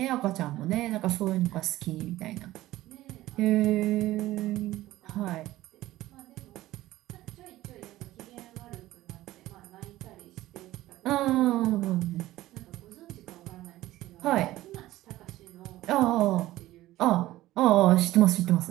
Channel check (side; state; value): left; quieter; 16.1 dB